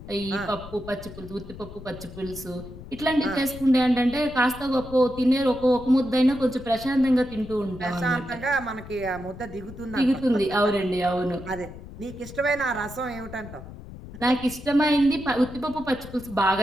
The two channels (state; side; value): noise; left; rumble, 14 dB below the sound